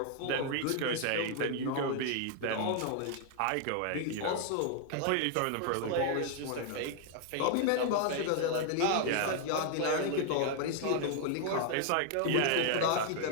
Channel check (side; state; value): both; different; correlation 0.00